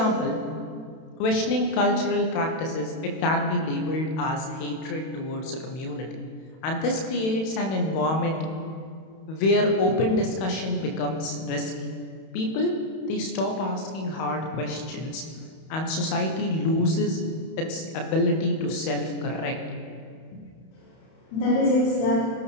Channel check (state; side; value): late; right; 31 ms